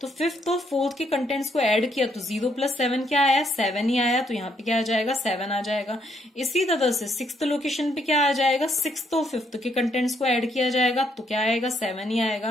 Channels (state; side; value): normal; both; correlation 0.72